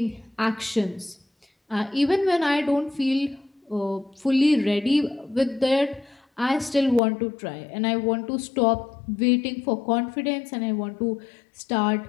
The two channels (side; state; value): right; drops out; at 7.0 s